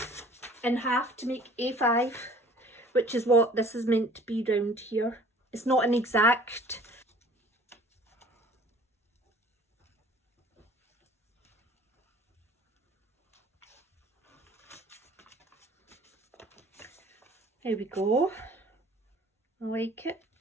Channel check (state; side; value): normal; both; correlation 0.51